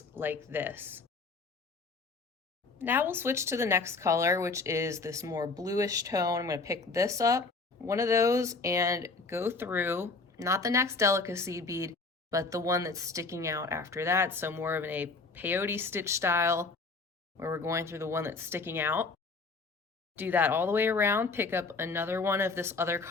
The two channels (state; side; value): quieter; right; 4.0 dB